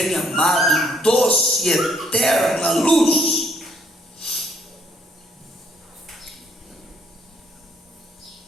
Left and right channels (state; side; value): normal; both; correlation 0.68